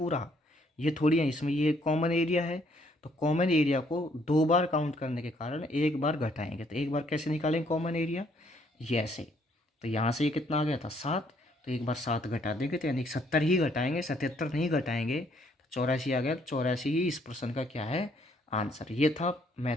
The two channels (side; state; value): both; normal; correlation 0.67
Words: ये थोड़ी है, इसमें ये कॉमन एरिया है। तो कॉमन एरिया को 2 बार काउंट करने के कारण एक बार घटाएंगे। तो एक बार कैसे निकालेंगे कॉमन एरिया, ये ऐसे। तो यहाँ से ये कितना आ गया था 7, तो एक बार 7 घटा देंगे, तो यानी 70 ही घटाएंगे, 77 नहीं घटाएंगे। तो 84 आ गया, 84 ही इस प्रश्न का क्या है आंसर। ये था